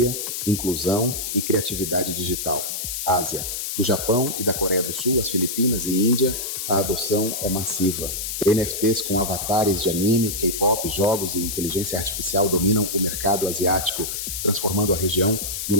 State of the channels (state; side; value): noise; left; hiss, 4 dB below the sound